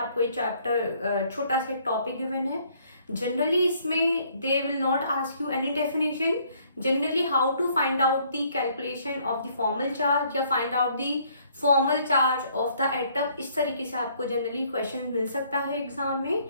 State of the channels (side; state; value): both; inverted; correlation -0.63